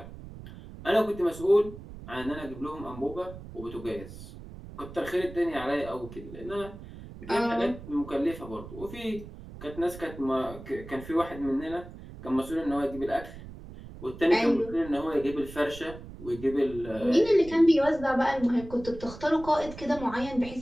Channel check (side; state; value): right; noise; rumble, 14 dB below the sound